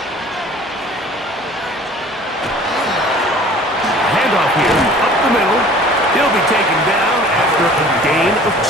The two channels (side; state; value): both; normal; correlation 0.48